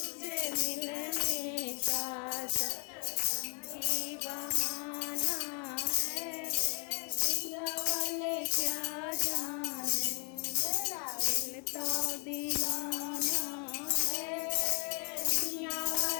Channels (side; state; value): right; quieter; 40.0 dB